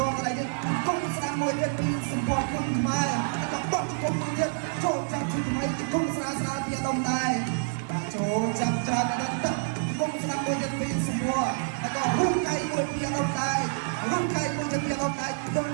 ាល់កន្លែងនេះគុំស្ដាប់មួយទៀតពីសម្ពោធគុំខ្មែរហើយក៏បោះគុំមួយទៀតចូលចាប់ជាថ្មីគុំស្រាពីអាដុំដែរបាទចូលចាប់ច្រើនដល់ទឹកគុំស្ដាប់មួយទៀតពីសម្ពោធហើយក៏រុំកៃមួយពីអាដុំដែររុំកៃមួយទៀតពីអាដុំដែរដល់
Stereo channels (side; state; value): left; silent; digital silence